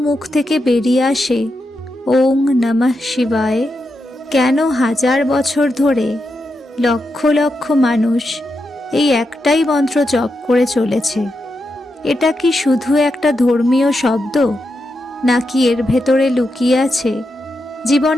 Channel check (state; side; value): normal; both; correlation 0.86